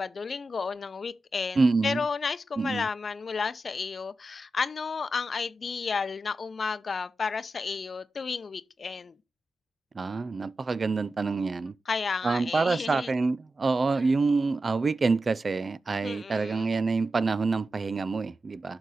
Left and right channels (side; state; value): both; normal; correlation 0.91